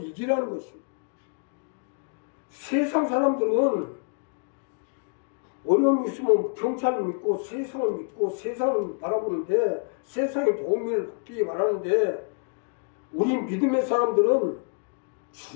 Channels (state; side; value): quieter; right; 38.7 dB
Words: 이기라는 것입니다. 세상 사람들은 어려움이 있으면 경찰을 믿고 세상을 믿고 세상을 바라보는데, 세상의 도움을 받기 바라는데, 우리 믿음의 사람들은